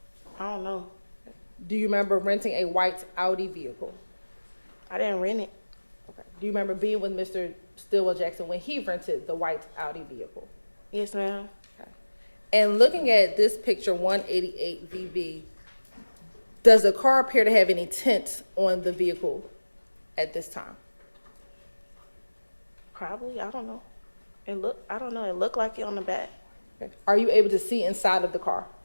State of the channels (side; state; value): both; inverted; correlation -1.00